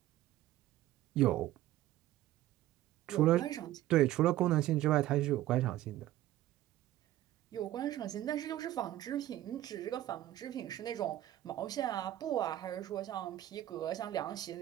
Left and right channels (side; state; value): left; quieter; 14.2 dB